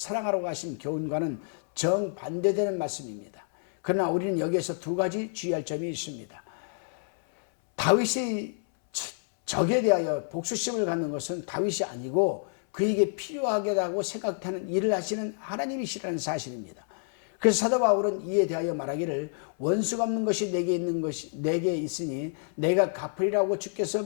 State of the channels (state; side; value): silent; right; 59 dB below the other